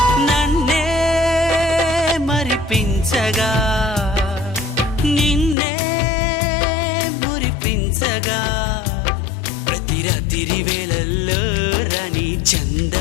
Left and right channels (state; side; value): drops out; right; at 5.6 s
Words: నిన్నే మురిపించగా ప్రతి రాత్రి వేళల్లో రాణి